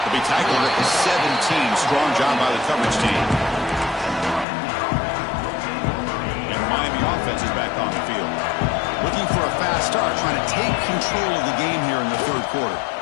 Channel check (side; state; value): right; drops out; at 4.5 s